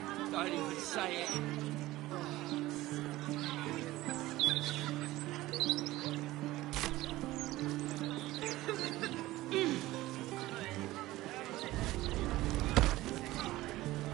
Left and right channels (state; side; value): quieter; left; 17.4 dB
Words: don't even say it.